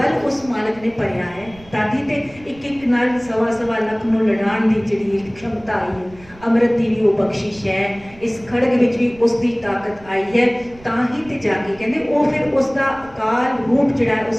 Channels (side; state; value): right; noise; rumble, 23 dB below the sound